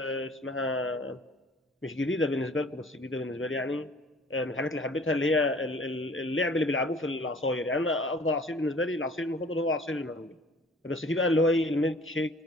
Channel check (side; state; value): both; normal; correlation 0.51